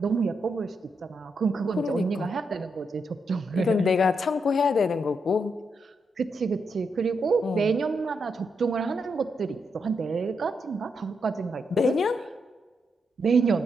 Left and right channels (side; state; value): both; normal; correlation 0.82